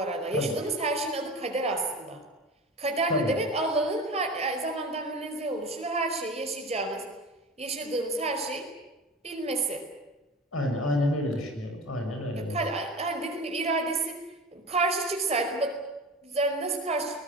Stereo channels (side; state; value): both; normal; correlation 0.33